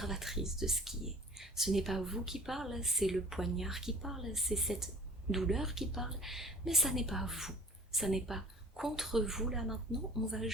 de ce qui est. Ce n'est pas vous qui parle, c'est le poignard qui parle, c'est cette douleur qui parle, mais ça n'est pas vous. Ça n'est pas contre vous là maintenant, on va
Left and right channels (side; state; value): both; normal; correlation 0.47